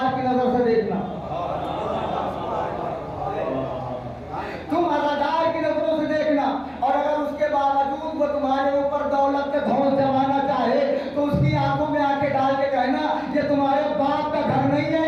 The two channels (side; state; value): both; identical; correlation 1.00